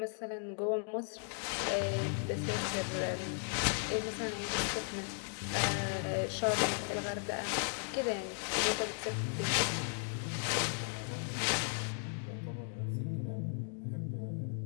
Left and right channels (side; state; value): right; silent; 54 dB below the other